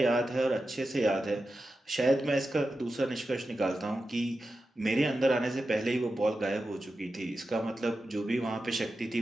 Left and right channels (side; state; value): both; normal; correlation 0.91